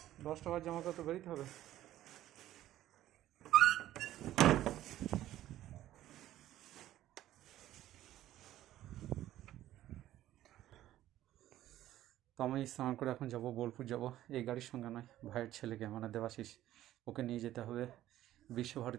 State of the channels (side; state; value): left; quieter; 13.6 dB